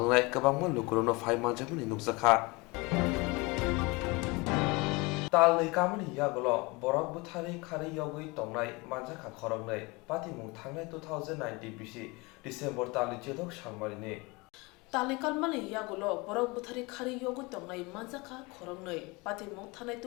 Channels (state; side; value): quieter; right; 25.7 dB